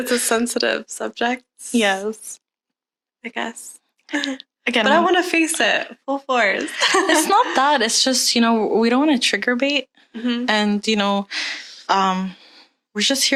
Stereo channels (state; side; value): identical; both; correlation 1.00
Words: a sensitive subject. Yes. I guess. Again, but I want to face it full force. It's not that. It's just, you know, we don't want to trigger bait. And, you know, we're just